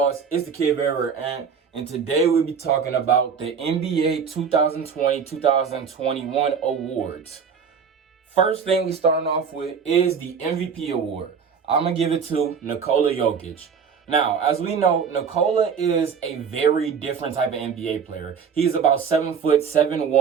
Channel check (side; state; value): left; quieter; 6.5 dB